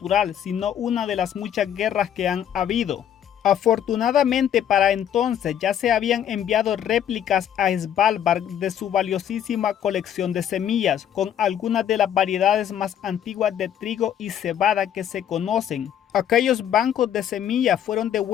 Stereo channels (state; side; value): quieter; right; 9.8 dB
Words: sino una de las muchas guerras que han habido. Afortunadamente para entonces ya se habían enviado réplicas a Svalbard de su valiosísima colección de semillas, con algunas de las variedades más antiguas de trigo y cebada que se conocen. Aquellos bancos de semillas fueron